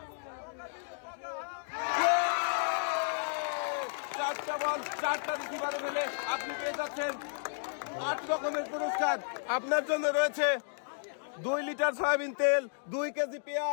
4টা বল 4টা রিসিভারে ফেলে আপনি পেয়ে যাচ্ছেন 8 রকমের পুরস্কার। আপনার জন্য রয়েছে 2 লিটার সয়াবিন তেল, 2 কেজি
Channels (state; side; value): silent; right; digital silence